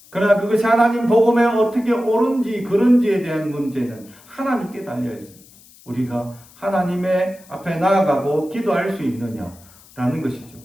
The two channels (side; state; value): left; noise; hiss, 25 dB below the sound